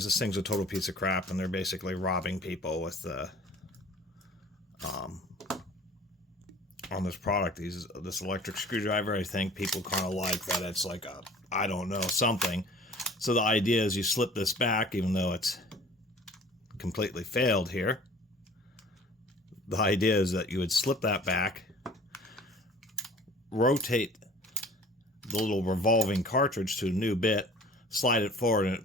This thing's a total piece of crap, and they're basically robbing people with the on this product. This electric screwdriver. I think people kind of like that it's like a, I don't know, something. So the idea is you slip this back, even though it's completely failed here. The idea is that you would slip that back, rotate the little revolving cartridge to a new bit, slide it forward, and it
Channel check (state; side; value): normal; both; correlation 0.48